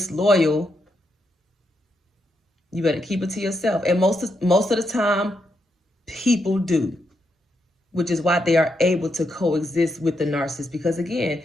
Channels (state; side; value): normal; both; correlation 0.81